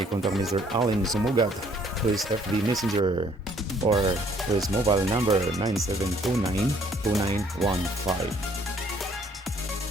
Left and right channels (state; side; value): normal; both; correlation 0.62